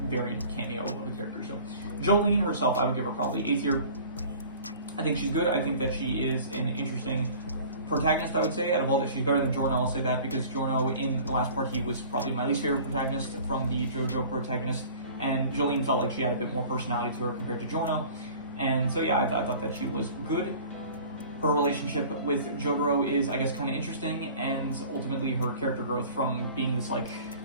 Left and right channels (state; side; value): inverted; both; correlation -0.45